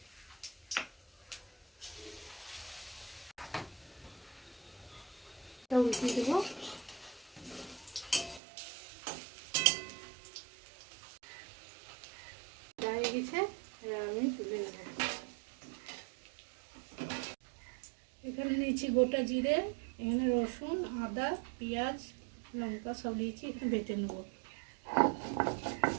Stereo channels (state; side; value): drops out; left; at 8.4 s